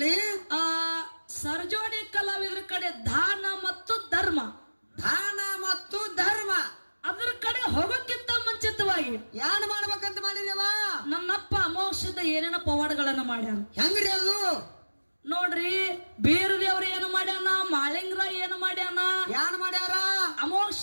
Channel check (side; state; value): both; inverted; correlation -1.00